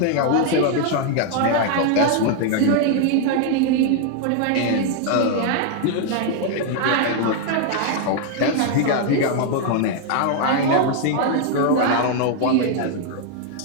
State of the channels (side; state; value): both; different; correlation 0.00